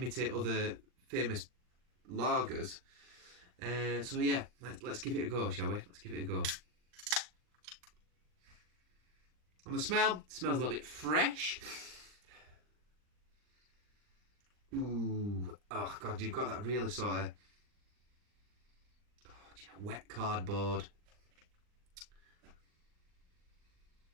other famous lagers. So yeah, let's give it a go, shall we? Let's give it a go. On the smell, it smells a little bit fresh. Ooh, oh god, you've got that really sort of wet cardboard.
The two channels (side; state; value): left; late; 39 ms